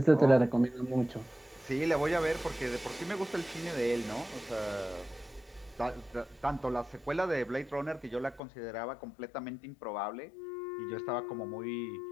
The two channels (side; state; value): right; drops out; at 8.4 s